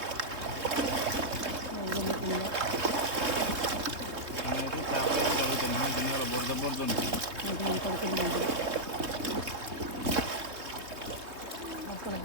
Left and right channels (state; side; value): late; left; 3.2 ms